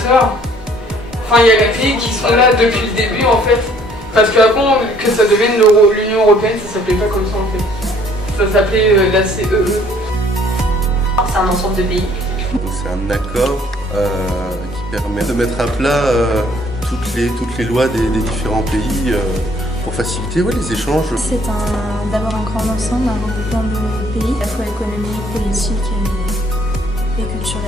Enfin, il y a les pays qui sont là depuis le début en fait. Parce qu'avant que ça devienne l'Union Européenne, ça s'appelait pas comme ça en fait. Ça s'appelait la CEE. C'est un ensemble de pays. C'est un accord qui permet de mettre à plat toutes les lois des différents pays pour faciliter les échanges. C'est d'abord un grand ensemble, un regroupement de pays, à la fois économique, politique et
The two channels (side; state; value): both; normal; correlation 0.60